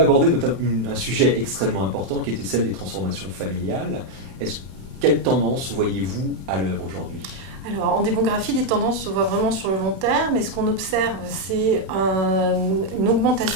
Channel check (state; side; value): late; left; 32 ms